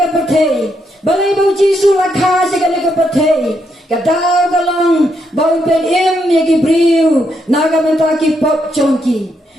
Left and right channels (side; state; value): both; normal; correlation 0.78